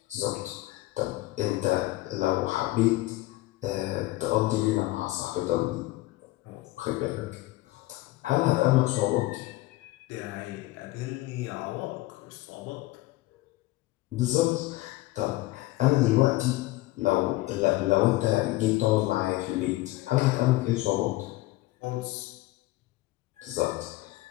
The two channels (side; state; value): right; quieter; 18.2 dB